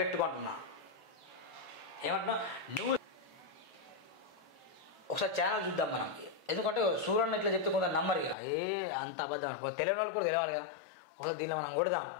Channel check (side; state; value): right; drops out; at 8.3 s